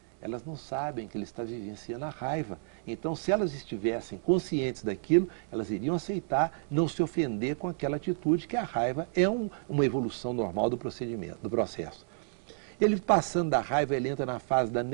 Elas não sabem que ele está vivenciando a raiva. Então, se elas estivessem conscientes daquilo, elas iriam aceitar, não se ofender com aquela atitude, que a raiva é uma evolução normal do procedimento, do processo. Ele passando da raiva, ele entra na fase da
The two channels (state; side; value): silent; left; digital silence